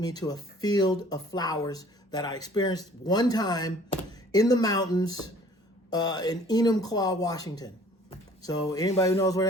to a field of flowers that I experienced one time in the mountains in Enumclaw, Washington. So anybody who knows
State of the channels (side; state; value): both; normal; correlation 0.53